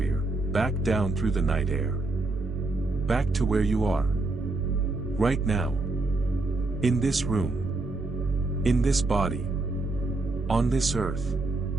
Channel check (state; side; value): quieter; left; 3.1 dB